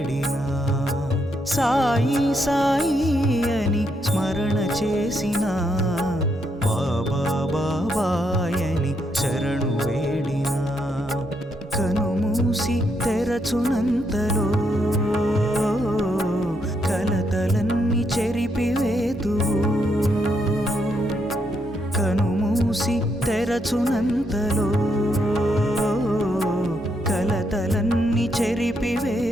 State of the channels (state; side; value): normal; both; correlation 0.77